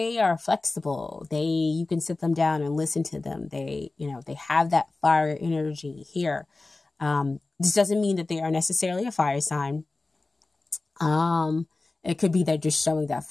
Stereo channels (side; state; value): right; quieter; 3.3 dB